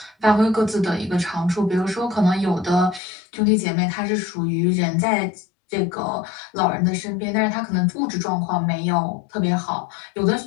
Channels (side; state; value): right; drops out; at 3.0 s